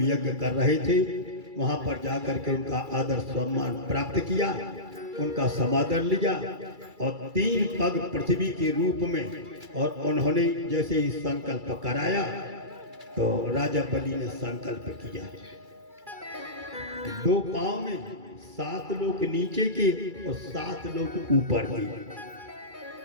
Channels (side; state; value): left; late; 2.3 ms